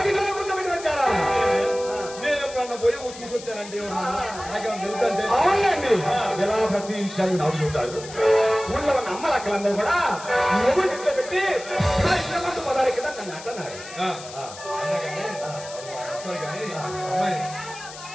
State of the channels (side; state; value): left; noise; hiss, 14 dB below the sound